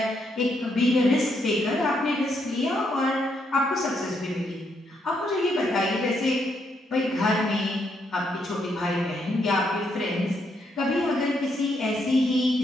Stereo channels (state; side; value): normal; both; correlation 0.76